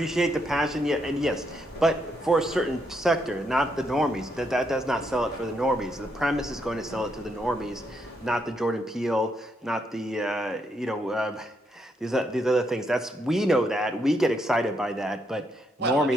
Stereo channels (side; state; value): both; normal; correlation 0.77